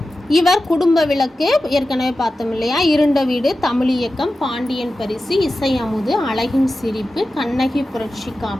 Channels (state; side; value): normal; both; correlation 0.93